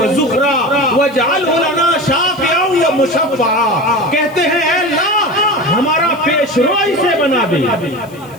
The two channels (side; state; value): left; noise; hiss, 26 dB below the sound